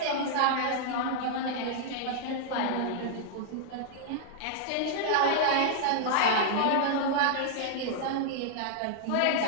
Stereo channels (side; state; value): both; different; correlation -0.01